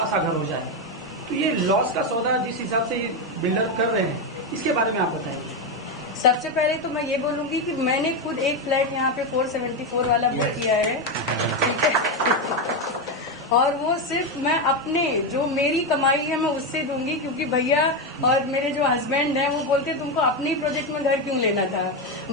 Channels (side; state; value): both; normal; correlation 0.09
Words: सा घर हो जाए, तो ये लॉस का सौदा जिस हिसाब से ये बिल्डर कर रहे हैं, इसके बारे में आप बताइए। सबसे पहले तो मैं ये बोलूंगी कि मैंने खुद एक फ्लैट यहाँ पे 474 वाला बुक किया है, ठीक है। और वो सिर्फ मैं अपने जो मेरी कमाई है मैं उससे दूंगी, क्योंकि भैया और मेरे जो हस्बैंड हैं वो बोलते तुमको अपने ही प्रोजेक्ट में घर क्यों लेना था।